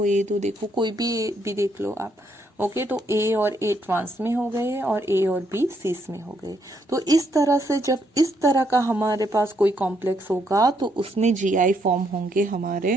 ये दो, देखो कोई भी देख लो आप। ओके, तो A और A ट्रांस में हो गए और A और B सिस में हो गए। तो इस तरह से जब इस तरह का हमारे पास कोई कॉम्प्लेक्स होगा तो उसमें GI फॉर्म होंगे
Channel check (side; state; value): both; normal; correlation 0.74